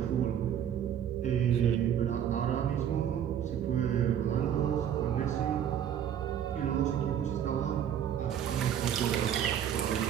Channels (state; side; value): quieter; left; 9.5 dB